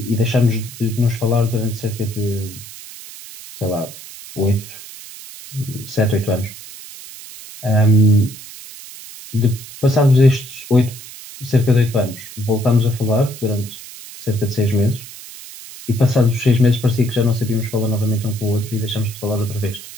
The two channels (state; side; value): noise; right; hiss, 15 dB below the sound